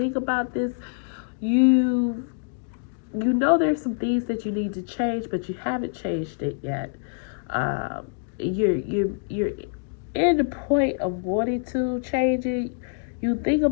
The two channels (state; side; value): silent; right; 61 dB below the other